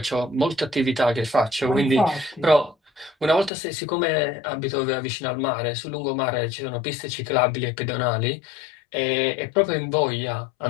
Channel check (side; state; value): right; drops out; at 3.5 s